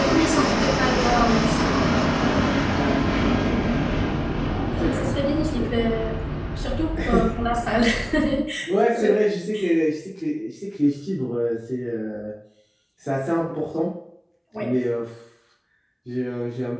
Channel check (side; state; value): both; identical; correlation 1.00